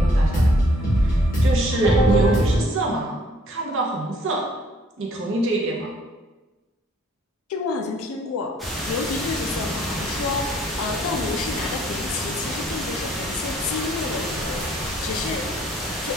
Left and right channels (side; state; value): both; normal; correlation 0.61